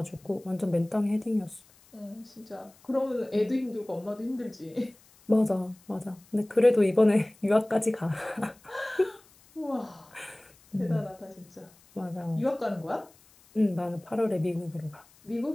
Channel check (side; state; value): left; noise; hiss, 28 dB below the sound